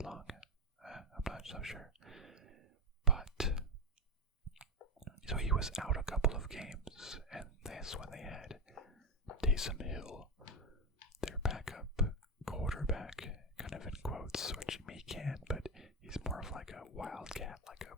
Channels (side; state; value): both; normal; correlation 0.10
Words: lung. I'm not so sure. But so he was out a couple of games, and that's when they had Taysom Hill, their backup quarterback, kind of in quotes, which he can, but he's more of like a wildcat, like